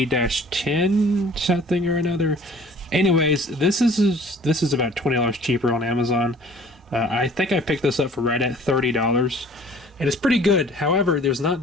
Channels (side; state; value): both; normal; correlation 0.51